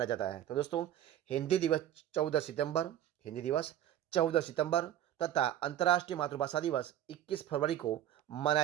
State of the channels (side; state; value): left; quieter; 11.6 dB